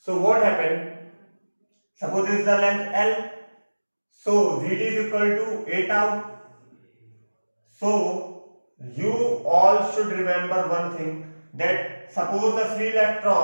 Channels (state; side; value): inverted; both; correlation -1.00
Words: what happened? Suppose this is the length L. So Vd is equal to a tau. So you all should remember one thing, that suppose the free